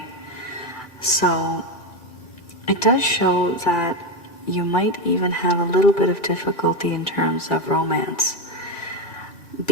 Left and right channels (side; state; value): right; late; 2.3 ms